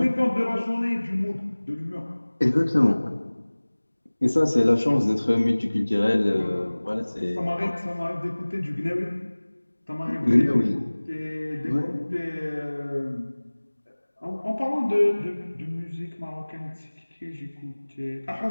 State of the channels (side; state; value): both; inverted; correlation -1.00